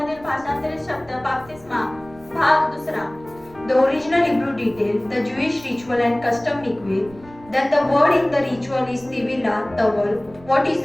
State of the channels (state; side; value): noise; right; rumble, 23 dB below the sound